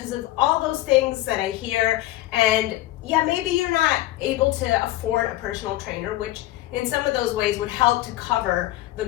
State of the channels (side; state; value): right; quieter; 16.1 dB